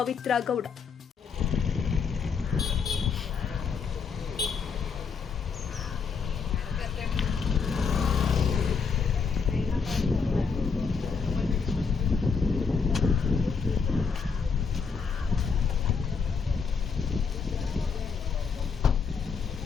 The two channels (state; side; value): quieter; right; 5.5 dB